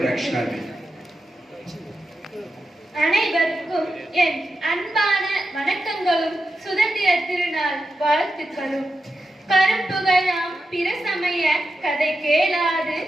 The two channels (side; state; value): both; normal; correlation 0.89